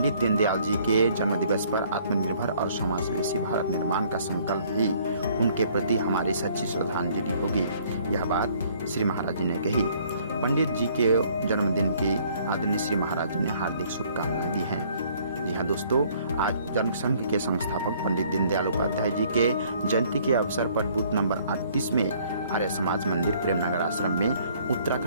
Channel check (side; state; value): both; inverted; correlation -0.60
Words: दीनदयाल जी के जन्म दिवस पर आत्मनिर्भर और समावेशी भारत निर्माण का संकल्प भी उनके प्रति हमारी सच्ची श्रद्धांजलि होगी। यह बात श्री महाराज जी ने कही। पंडित जी के जन्मदिन की आदरणीय श्री महाराज जी ने हार्दिक शुभकामनाएं दी हैं। जी हाँ दोस्तों, आज जनसंघ के संस्थापक पंडित दीनदयाल उपाध्याय जी के जयंती के अवसर पर बूथ नंबर 38 में आर्य समाज मंदिर प्रेमनगर आश्रम में